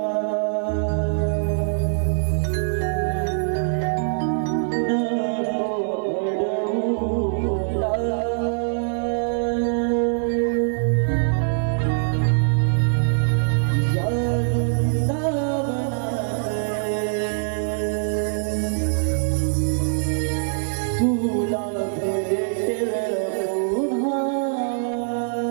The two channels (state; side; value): silent; left; digital silence